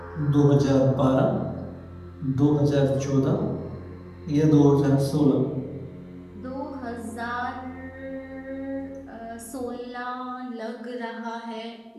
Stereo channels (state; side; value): identical; both; correlation 1.00